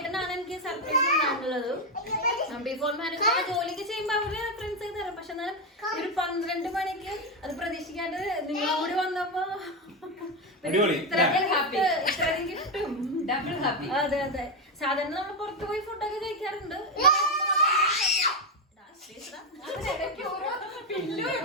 എനിക്ക് സർപ്രൈസ് ഉണ്ടായിട്ടുള്ളത്. ബിഫോർ മാരേജ് ജോലിക്ക് ചെയ്യുമ്പോ അവര് ഫ്രണ്ട്സ് ആയി തരാം. പക്ഷെ എന്നാൽ ഒരു 12 മണിക്ക് അത് പ്രതീക്ഷിക്കാണ്ട് നിങ്ങളും കൂടി വന്നപ്പോ ഇത്രയും കിട്ടും. Double happy. അതെ അതെ. സാധാരണ നമ്മൾ പുറത്തു പോയി ഫുഡൊക്കെ കഴിക്കാറുണ്ട്.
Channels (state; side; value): normal; both; correlation 0.08